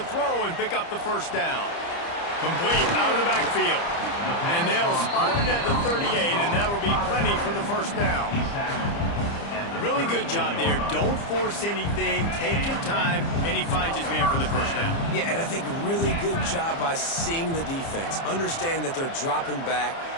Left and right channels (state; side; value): late; right; 30 ms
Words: throw and pick up the first down. Complete out of the backfield. And they'll spot it at the 38, and that'll be plenty for the first down. Really good job there. Don't force anything. Take your time, and he finds his man for the first down. Yeah, and I think really good job by seeing the defense. Understand that they're dropping back.